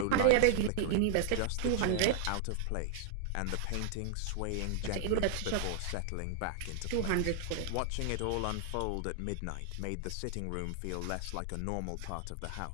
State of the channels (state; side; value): different; both; correlation 0.00